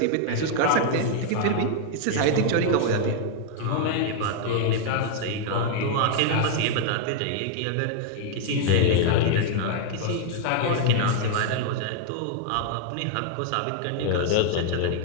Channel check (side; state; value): both; different; correlation 0.00